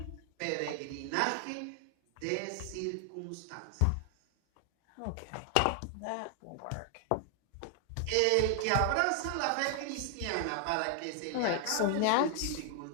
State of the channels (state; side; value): different; both; correlation 0.00